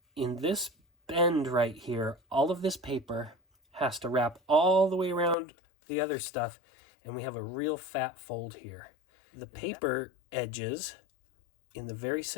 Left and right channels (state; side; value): drops out; right; at 5.4 s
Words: in this bend right here, all of this paper has to wrap all the way around the other stuff, and we have a real fat fold here. The paper edges in the very